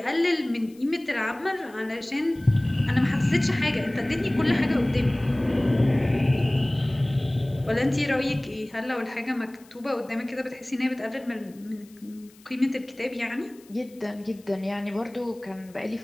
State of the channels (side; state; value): left; noise; hiss, 27 dB below the sound